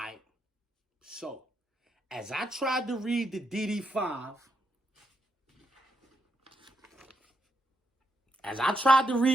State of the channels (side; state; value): both; normal; correlation 0.80